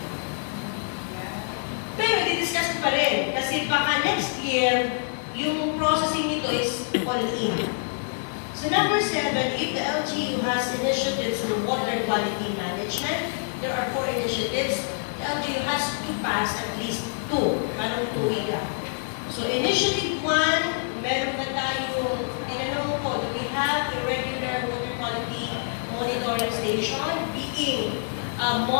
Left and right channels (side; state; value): right; silent; 61 dB below the other